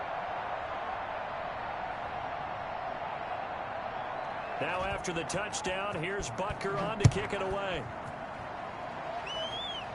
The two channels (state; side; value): identical; both; correlation 1.00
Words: Now after the touchdown, here's Butker on to kick it away.